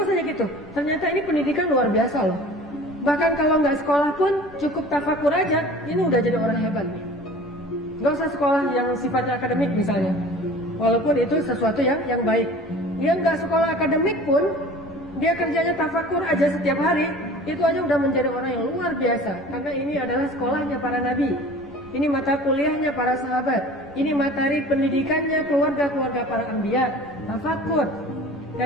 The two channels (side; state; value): both; normal; correlation 0.43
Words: aja gitu. Ternyata ini pendidikan luar biasa loh. Bahkan kalau nggak sekolah pun cukup tafakur aja, ini udah jadi orang hebat nih. Gak usah sekolah yang sifatnya akademik misalnya. Walaupun itu sesuatu yang baik. Dia nggak sekolah akademik pun, dia kerjanya tafakur aja setiap hari, itu aja udah menjadi orang yang luar biasa. Karena ini adalah sekolahnya para nabi. Ini mata kuliahnya para sahabat. Ini materi pendidikannya keluarga-keluarga para anbiya. Tafakur.